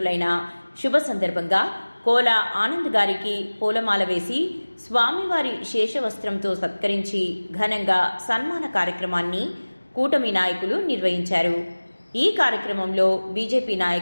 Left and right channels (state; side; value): inverted; both; correlation -1.00